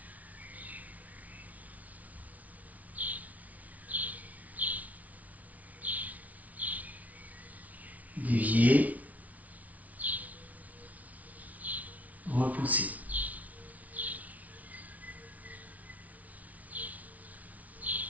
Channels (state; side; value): late; left; 0.071 ms